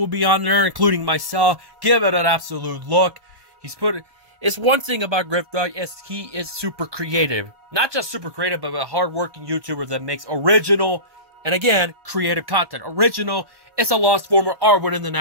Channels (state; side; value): late; left; 1.1 ms